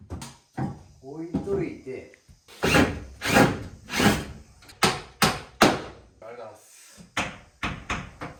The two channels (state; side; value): identical; both; correlation 1.00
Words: 置いといて。